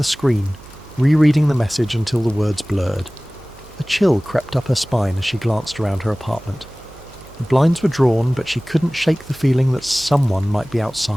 screen, rereading the message until the words blurred. A chill crept up her spine as she glanced around her apartment. The blinds were drawn, but she couldn't shake the feeling that someone might be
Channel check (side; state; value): right; noise; hum, 21 dB below the sound